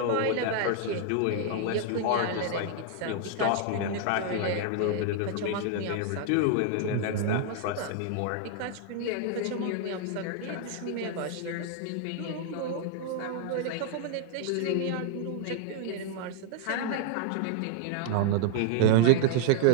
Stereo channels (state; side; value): different; both; correlation 0.00